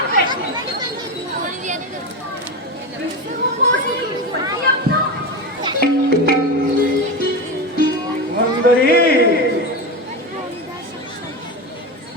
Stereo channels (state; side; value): normal; both; correlation 0.19